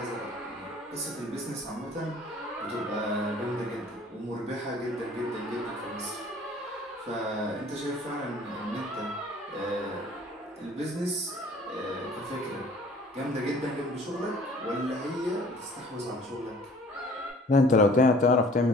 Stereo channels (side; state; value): both; normal; correlation 0.52